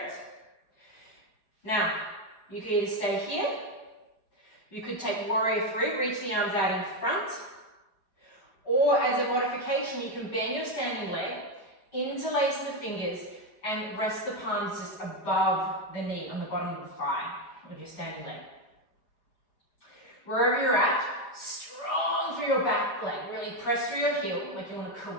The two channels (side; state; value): right; late; 4.7 ms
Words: it. Now, you could either stay here. You could take warrior 3, reach the arms out in front. Or as a modification, you can bend your standing leg, interlace the fingers, and rest the palms just above the knee on the bottom of the thigh of your standing leg. Wherever you're at, strong through your back leg. Really press through your heel like you want to